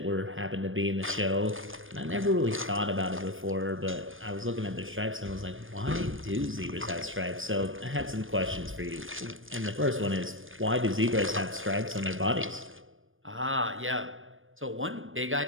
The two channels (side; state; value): left; late; 0.59 ms